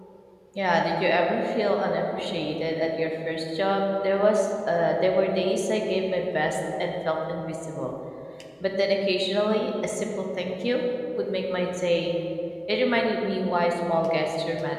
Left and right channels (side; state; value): both; identical; correlation 1.00